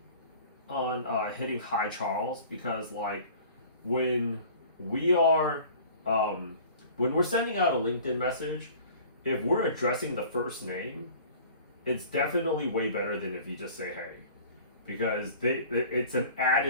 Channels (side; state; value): both; inverted; correlation -0.46